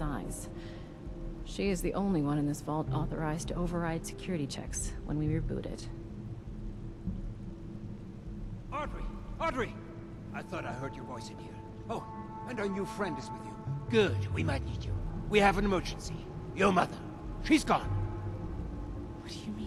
She is the only one in this vault authorized to override security checks when we reboot it. Audrey! Audrey! I thought I heard your voice in here. Oh, and our new friend is with you. Good, we might need you. We have an emergency. Your mother. She's gone. What do you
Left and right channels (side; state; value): both; identical; correlation 1.00